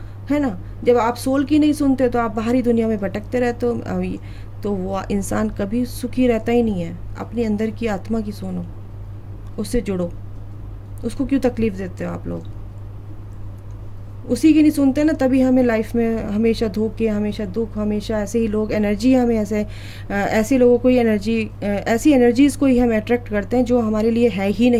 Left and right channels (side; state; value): both; identical; correlation 1.00